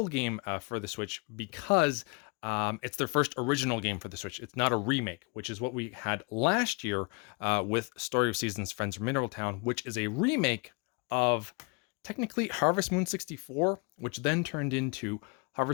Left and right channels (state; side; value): quieter; right; 31.5 dB